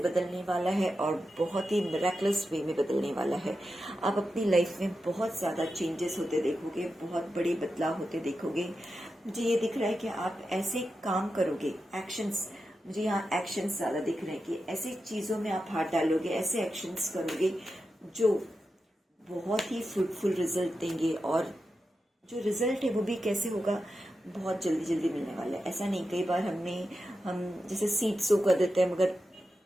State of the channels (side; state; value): both; normal; correlation 0.90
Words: वाला है और बहुत ही मिरेकलस वे में बदलने वाला है। आप अपनी लाइफ में बहुत ज़्यादा चेंजेस होते देखोगे, बहुत बड़े बदलाव होते देखोगे। मुझे ये दिख रहा है कि आप ऐसे काम करोगे, एक्शंस, मुझे यहाँ एक्शंस ज़्यादा दिख रहे हैं कि ऐसी चीज़ों में आप हाथ डालोगे, ऐसे एक्शंस करोगे जो बहुत ही फ्रूटफुल रिजल्ट देंगे। और जो रिजल्ट है वो भी कैसे होगा, बहुत जल्दी जल्दी मिलने वाला है। ऐसा नहीं, कई बार हम जैसे सीड सो कर देते हैं मगर